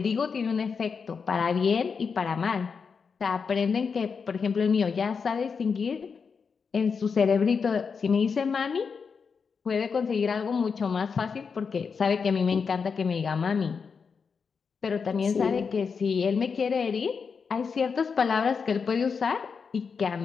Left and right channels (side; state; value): right; quieter; 5.7 dB